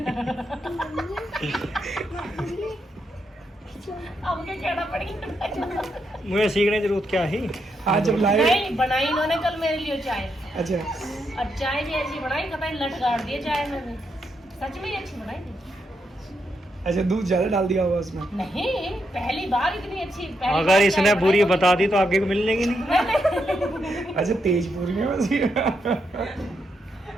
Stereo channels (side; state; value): both; normal; correlation 0.80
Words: अब क्या कहना पड़ेगा? मुझे सीखने की जरूरत क्या है? आज जब लाए। नहीं, बनाई इन्होंने कल मेरे लिए चाय, अच्छा। और चाय भी ऐसी बनाई, कतई लट गाड़ दिए चाय में भी। सच में ही अच्छी बनाई थी। अच्छा, दूध ज्यादा डाल दिया होगा उसमें? नहीं, पहली बार इतनी अच्छी। अगर इसने बुरी बता दी तो आगे को मिलेगी नहीं। अच्छा, तेज पूरी है बस ये।